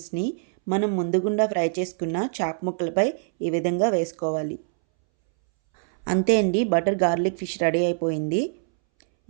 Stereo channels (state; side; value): silent; left; 62 dB below the other